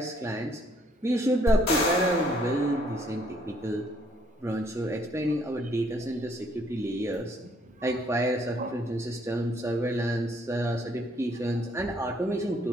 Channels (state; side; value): normal; both; correlation 0.66